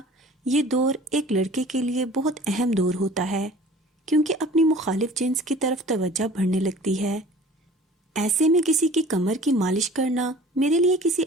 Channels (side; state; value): both; normal; correlation 0.46